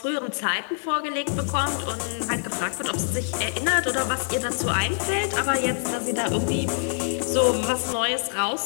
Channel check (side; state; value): right; silent; digital silence